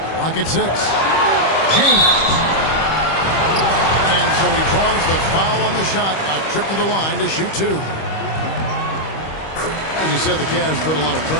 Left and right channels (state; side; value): late; right; 25 ms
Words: Lock at 6. James. And so he draws the foul on the shot. A trip to the line to shoot 2. As you said, the Cavs put a lot of